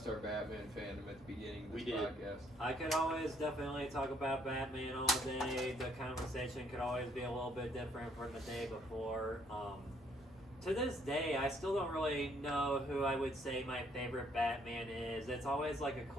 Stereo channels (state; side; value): normal; both; correlation 0.67